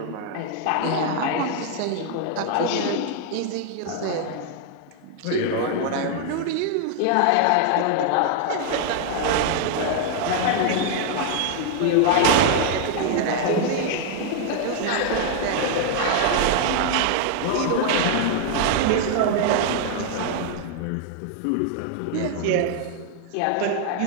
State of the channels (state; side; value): different; both; correlation 0.00